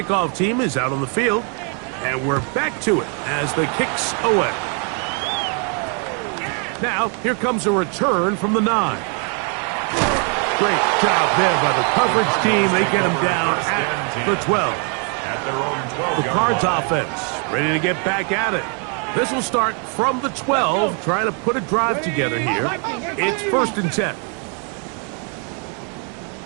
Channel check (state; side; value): quieter; left; 39.9 dB